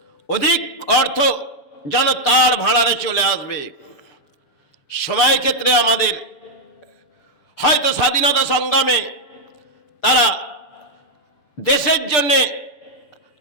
অধিক অর্থ যেন তার ভাড়ারে চলে আসবে। সময় ক্ষেত্রে আমাদের হয়তো স্বাধীনতা সংগ্রামে তারা দেশের জন্যে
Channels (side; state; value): right; late; 6.8 ms